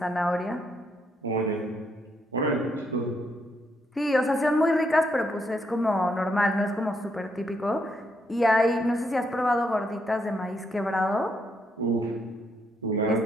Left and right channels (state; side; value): normal; both; correlation 0.76